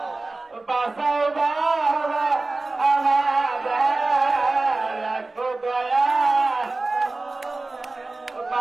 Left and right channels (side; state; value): left; quieter; 3.3 dB